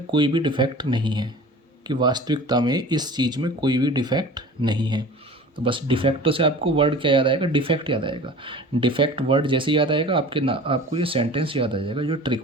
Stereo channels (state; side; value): normal; both; correlation 0.40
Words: कोई भी डिफेक्ट नहीं है, कि वास्तविकता में इस चीज़ में कोई भी डिफेक्ट नहीं है। तो बस डिफेक्टों से आपको वर्ड क्या याद आएगा, डिफेक्ट याद आएगा। डिफेक्ट वर्ड जैसे याद आएगा आपको ये सेंटेंस याद आ जाएगा जो